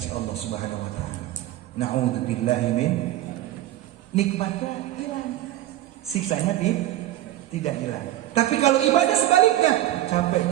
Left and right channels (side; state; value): left; quieter; 14.2 dB